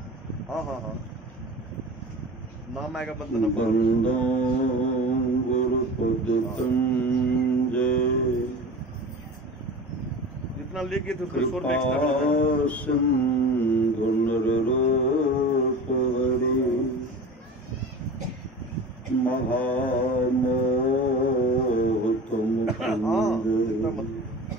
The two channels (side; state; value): both; normal; correlation 0.34